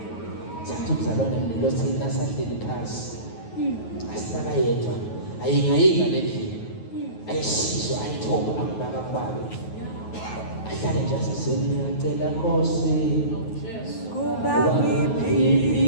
thatha umzalwane lothi nasahleli phasi asinakayedwa ayingayinga lendlela ayisizwe ayithoba akubaka kubabe ahlale nje asesengiyacela Nkosi kuba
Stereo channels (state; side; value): late; right; 9.3 ms